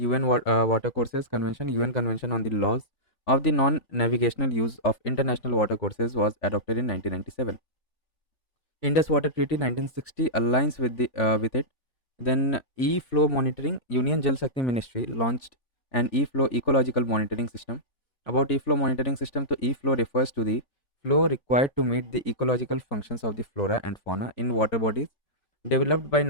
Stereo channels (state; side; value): late; right; 3.5 ms